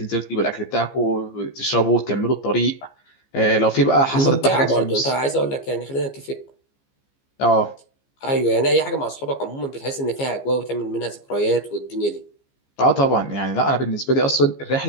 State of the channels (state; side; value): late; right; 15 ms